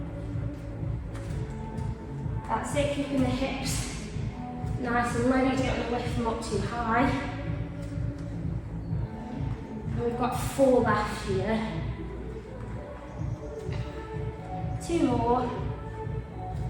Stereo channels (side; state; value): both; identical; correlation 1.00